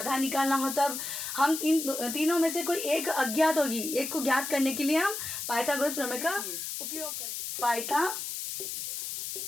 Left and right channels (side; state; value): left; noise; hiss, 5 dB below the sound